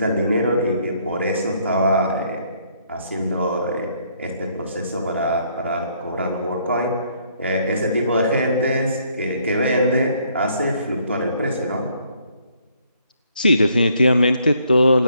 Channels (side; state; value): both; inverted; correlation -0.68